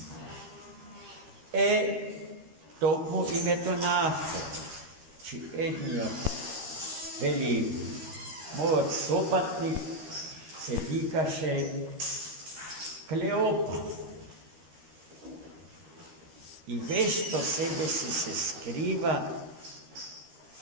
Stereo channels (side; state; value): left; late; 13 ms